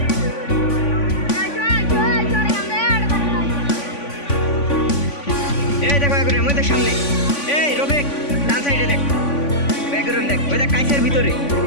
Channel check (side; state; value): right; late; 3.5 ms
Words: এই দেখো এখন আমাদের সামনে, এই রফিক ডান সাইডে দেখ, ব্যাকগ্রাউন্ড দেখ, ওই দেখ কাছের ভিতরে